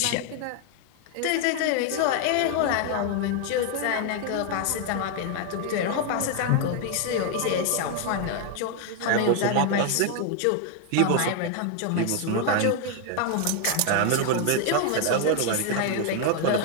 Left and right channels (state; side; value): different; both; correlation 0.00